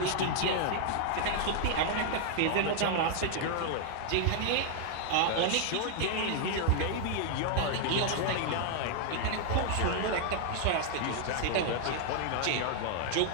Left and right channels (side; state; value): both; different; correlation 0.00